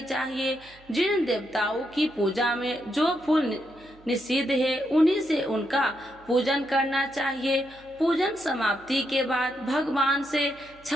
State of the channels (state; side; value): noise; right; hum, 26 dB below the sound